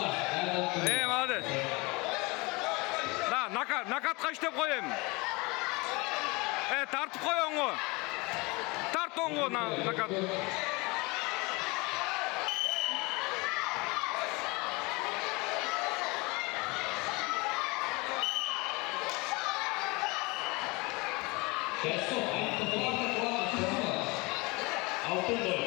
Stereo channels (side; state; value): right; quieter; 25.8 dB